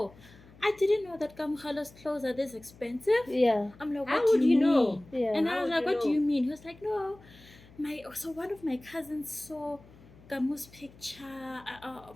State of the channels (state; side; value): noise; left; hum, 23 dB below the sound